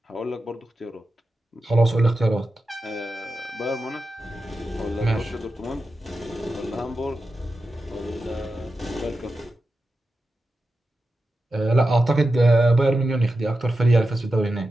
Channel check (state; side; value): normal; both; correlation 0.91